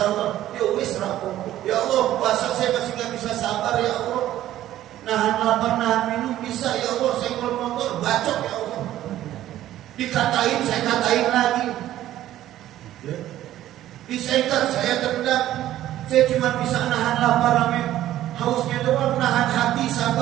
Allah. Ya wis rapopo. Ya Allah, puasa saya masih gak bisa sabar ya Allah. Nahan lapar, nahan minum bisa ya Allah. Saya kalau motor bacok ya Allah. Dikatain, saya katain lagi. Ya. Disaikat, saya tendang. Saya cuma bisa nahan lapar amin. Hausnya doang, nahan hati,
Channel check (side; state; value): left; quieter; 13.3 dB